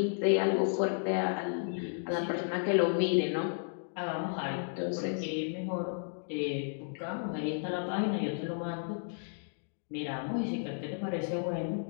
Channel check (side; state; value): right; silent; digital silence